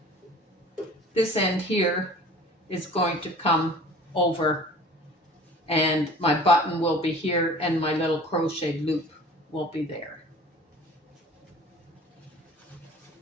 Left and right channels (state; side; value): normal; both; correlation 0.45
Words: this end here is going to come over, and my button will be here and my little crochet loop will be there.